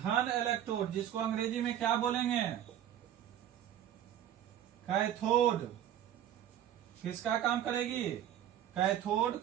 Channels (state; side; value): quieter; left; 10.9 dB